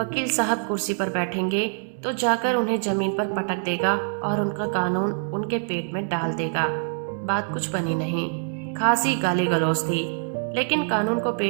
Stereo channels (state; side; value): silent; left; digital silence